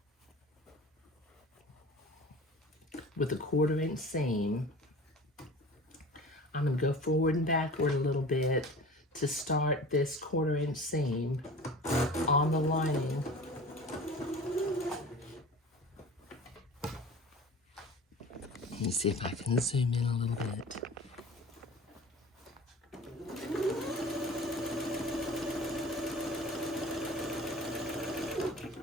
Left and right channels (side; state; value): both; normal; correlation 0.39